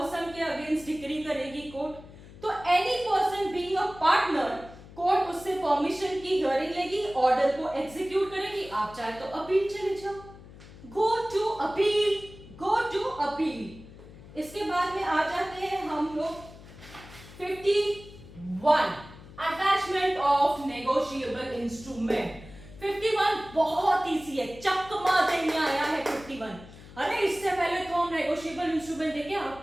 के अगेंस्ट डिक्री करेगी कोर्ट। तो any person being a partner, court उससे परमिशन की हियरिंग लेगी, ऑर्डर को एग्जीक्यूट करेगी। आप चाहे तो अपील चले जाओ, go to appeal, go to appeal. इसके बाद में आ जाते हैं हम लोग 51 अटैचमेंट ऑफ नेगोशिएबल इंस्ट्रूमेंट। 51 बहुत इजी है, चकमा देने आया है 51। अरे इससे पहले तो हम नेगोशिएबल इंस्ट्रूमेंट देखे,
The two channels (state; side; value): noise; left; hum, 18 dB below the sound